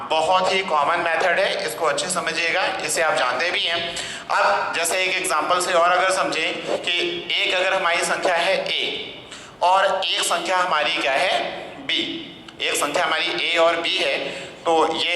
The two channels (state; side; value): identical; both; correlation 1.00